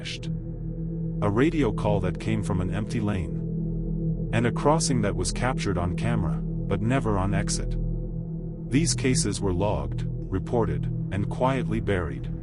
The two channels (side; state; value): both; identical; correlation 1.00